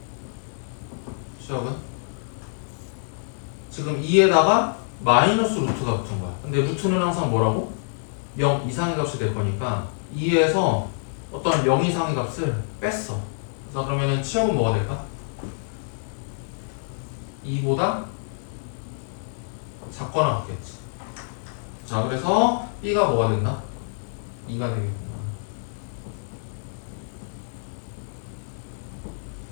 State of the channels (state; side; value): silent; right; 57 dB below the other